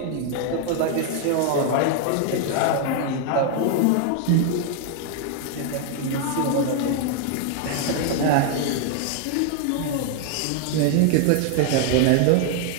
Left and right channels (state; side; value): different; both; correlation 0.00